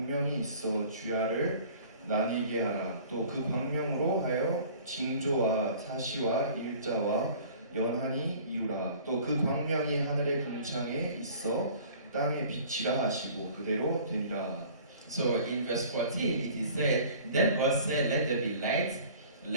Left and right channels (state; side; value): inverted; both; correlation -0.48